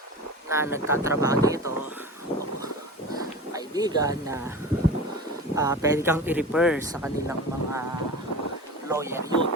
na nagtatrabaho dito, kaibigan na pwede kang i-refer sa kanilang mga lawyer, yun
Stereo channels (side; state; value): both; normal; correlation 0.32